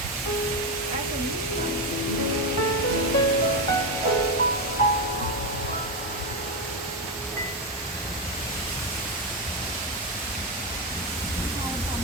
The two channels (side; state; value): both; normal; correlation 0.09